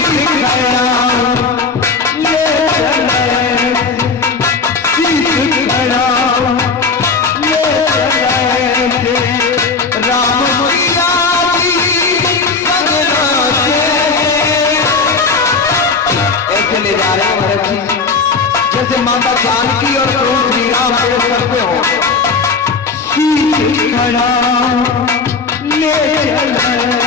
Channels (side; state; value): right; quieter; 4.6 dB